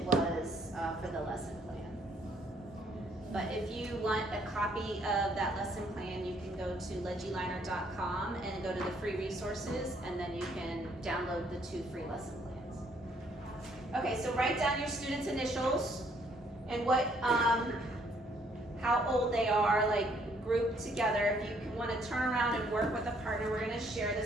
was for the lesson plan. But if you want a copy of that lesson plan, you can go to legiliner.com and go to the free resources, and then you can download the 2 free lesson plans. Okay, so write down your students' initials and what, how old they are, like grouped together. If you want to turn around and work with a partner, we're going to share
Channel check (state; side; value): normal; both; correlation 0.66